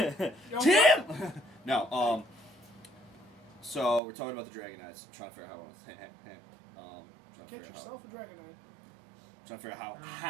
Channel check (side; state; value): left; drops out; at 4.0 s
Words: Tim! No, so we're talking about the Dragon Knights. I'm trying to figure out how I want to Get yourself a Dragon Knight. trying to figure out